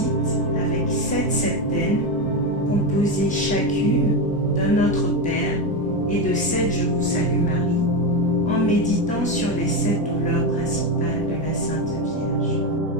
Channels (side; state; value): both; normal; correlation 0.12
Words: avec 7 septaines composées chacune d'un Notre Père et de 7 Je vous salue Marie, en méditant sur les 7 douleurs principales de la Sainte Vierge.